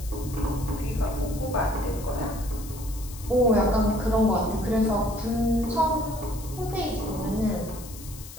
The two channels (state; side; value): noise; left; hiss, 15 dB below the sound